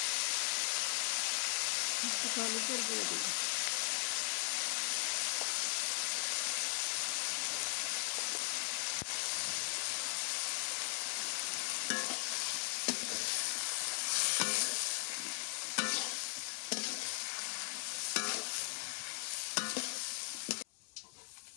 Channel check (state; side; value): silent; right; 52 dB below the other